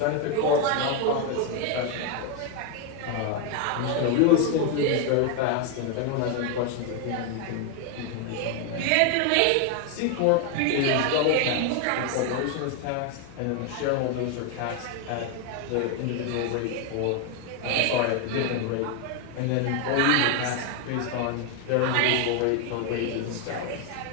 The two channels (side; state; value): both; different; correlation 0.01